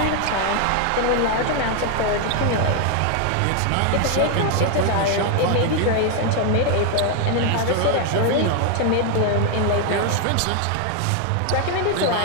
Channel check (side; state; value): both; different; correlation 0.01